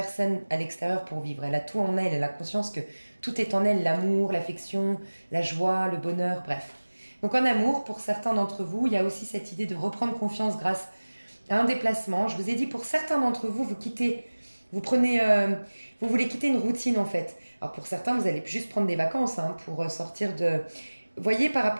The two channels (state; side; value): inverted; both; correlation -1.00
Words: à l'extérieur pour vivre. Elle a tout en elle a conscience que tout est en elle, l'amour, l'affection, la joie, le bonheur, bref. Donc en amour, pour certains d'entre vous, il y a aussi cette idée de reprendre confiance grâce à un déplacement. Je vous ai dit, pour certains d'entre vous, vous voulez quitter une routine en fait. Alors pour certains, vous allez juste prendre des vacances pour sortir de... Vous voyez, par